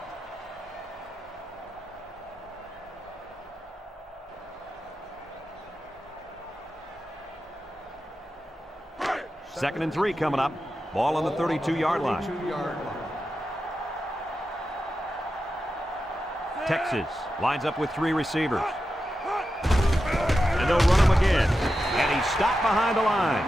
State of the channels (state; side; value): normal; both; correlation 0.90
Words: Second and 3 coming up. Ball on the 32-yard line. 32-yard line. Texas lines up with 3 receivers. And they'll run him again. And he's stopped behind the line.